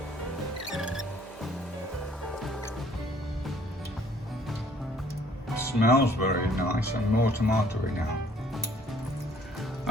Smells very nice and more tomatoey now.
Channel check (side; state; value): both; normal; correlation 0.59